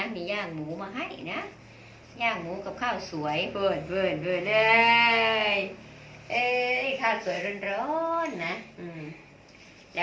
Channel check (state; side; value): identical; both; correlation 1.00